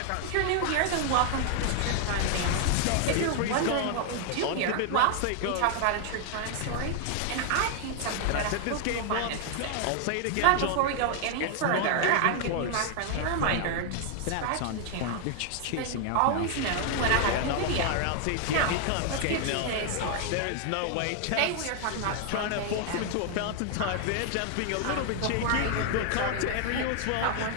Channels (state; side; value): different; both; correlation 0.00